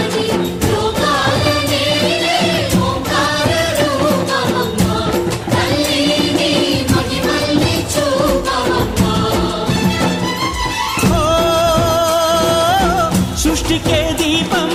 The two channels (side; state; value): both; identical; correlation 1.00